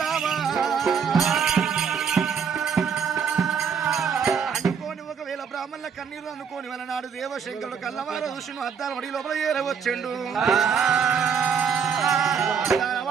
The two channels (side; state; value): left; quieter; 6.7 dB